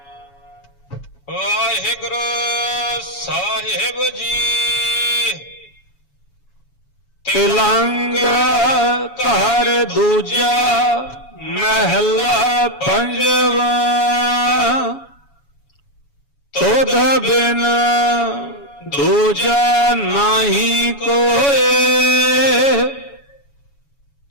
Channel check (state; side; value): late; right; 7.1 ms